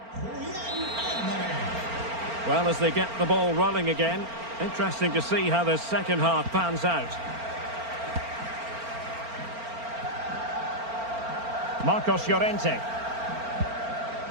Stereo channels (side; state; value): left; late; 4.4 ms